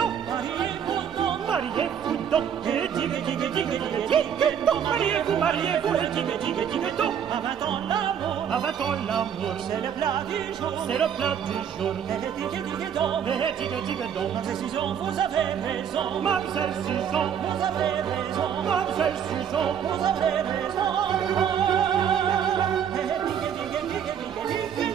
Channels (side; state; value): left; quieter; 8.5 dB